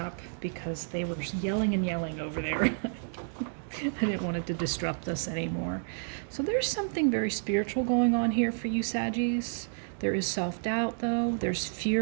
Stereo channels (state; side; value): silent; left; digital silence